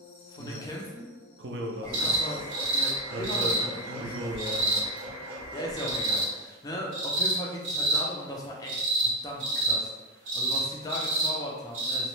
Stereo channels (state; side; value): normal; both; correlation 0.06